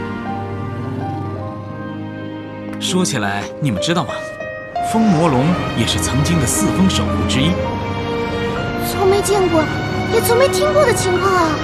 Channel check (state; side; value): identical; both; correlation 1.00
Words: 说起来，你们知道吗？风魔龙也是曾经的四风守护之一。从没见过，也从没听过的情况啊！